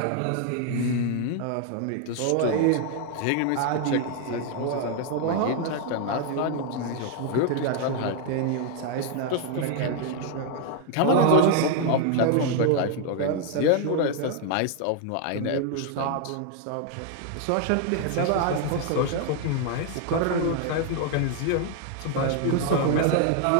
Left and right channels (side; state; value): both; different; correlation 0.00